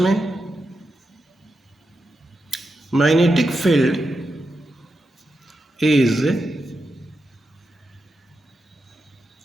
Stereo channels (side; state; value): both; normal; correlation 0.87